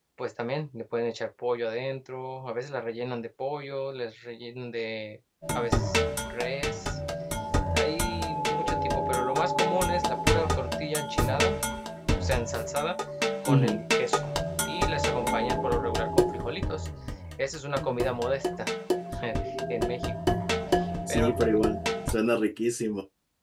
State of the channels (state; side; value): identical; both; correlation 1.00